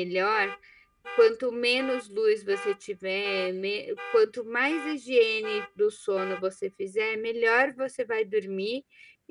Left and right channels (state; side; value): identical; both; correlation 1.00